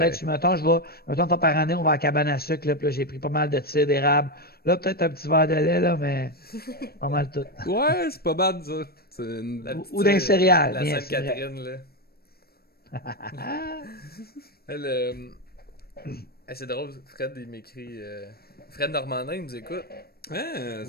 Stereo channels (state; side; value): late; right; 0.45 ms